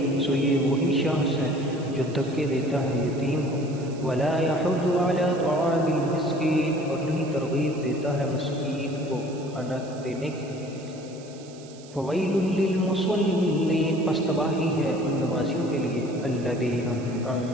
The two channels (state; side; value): noise; right; hiss, 22 dB below the sound